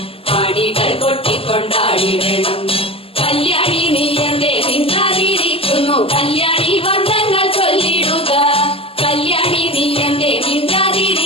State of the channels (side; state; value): right; late; 0.27 ms